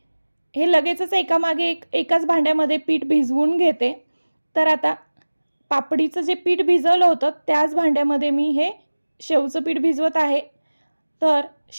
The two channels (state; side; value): inverted; both; correlation -1.00